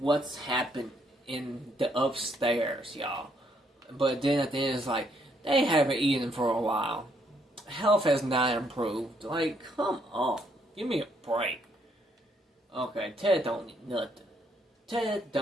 happened in the upstairs, y'all. But then at the end it's like, they haven't eaten for a while. Health has not improved. Like, come on. Give me a break. Okay, Ted don't need nothing. Ted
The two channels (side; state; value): both; normal; correlation 0.72